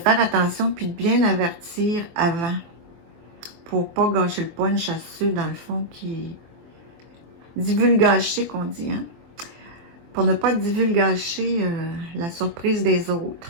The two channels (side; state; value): left; late; 24 ms